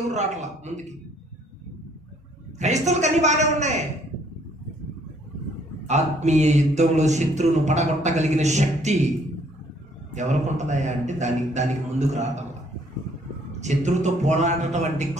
రావట్లా ముందుకి. క్రైస్తవులకు అన్ని బాగానే ఉన్నాయి. ఆత్మీయ యుద్ధంలో శత్రువును పడగొట్టగలిగిన శక్తి ఎవరికి ఉంటుందయా అంటే దానికి ముందుకు రావటం. శత్రువుతో పోరాడటం అంటే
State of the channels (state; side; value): normal; both; correlation 0.63